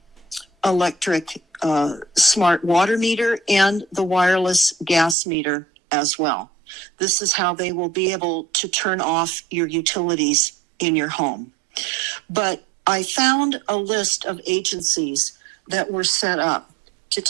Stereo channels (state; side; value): drops out; left; at 5.2 s